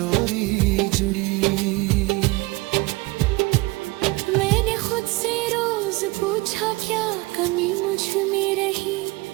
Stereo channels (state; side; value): quieter; left; 22.9 dB